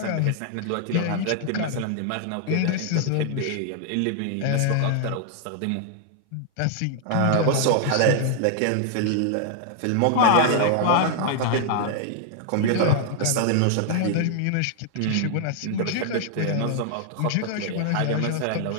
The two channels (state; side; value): different; both; correlation 0.00